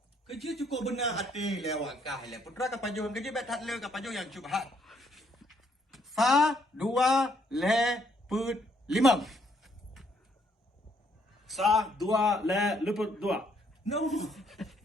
Kerja cukup benar hati lewat kah le. Putra kapaju kerja bet hat le kapaju yang cubhat. Sa, dua, le, put, limang. Sa, dua, le, luput, dua. No.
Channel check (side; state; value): both; normal; correlation 0.69